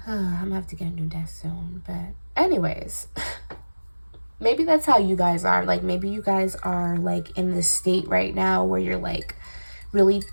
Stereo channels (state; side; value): inverted; both; correlation -1.00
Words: I'm gonna have to get a new desk soon. But anyways, maybe that's how you guys are. Like, maybe you guys are, like, in this state right now where you're, like, really